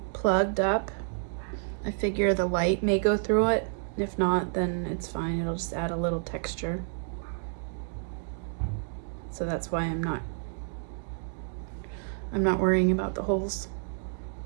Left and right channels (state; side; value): silent; left; digital silence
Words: plugged up. I figure the light may go through it. If not, then it's fine. It'll just add a little texture. So that's why I'm not worrying about the holes.